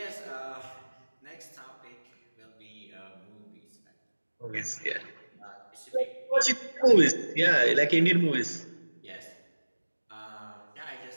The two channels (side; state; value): both; inverted; correlation -1.00